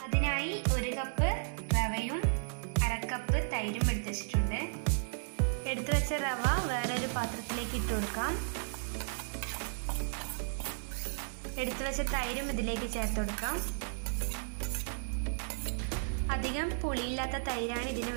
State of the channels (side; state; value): left; silent; digital silence